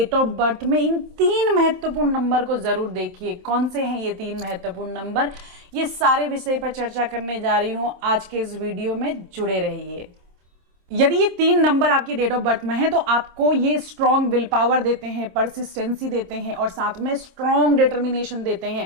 ऑफ बर्थ में इन 3 महत्वपूर्ण नंबर को जरूर देखिए। कौन से हैं ये 3 महत्वपूर्ण नंबर, ये सारे विषय पर चर्चा करने जा रही हूं आज के इस वीडियो में, जुड़े रहिए। यदि ये 3 नंबर आपकी डेट ऑफ बर्थ में है तो आपको ये स्ट्रॉन्ग विल पावर देते हैं, परसिस्टेंसी देते हैं और साथ में स्ट्रॉन्ग डिटर्मिनेशन देते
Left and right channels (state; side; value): late; left; 26 ms